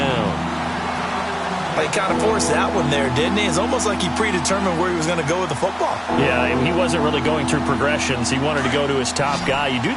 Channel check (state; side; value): identical; both; correlation 1.00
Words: He kind of forced that one there, didn't he? It's almost like he predetermined where he was going to go with the football. Yeah, he wasn't really going through progressions. He wanted to go to his top guy. You do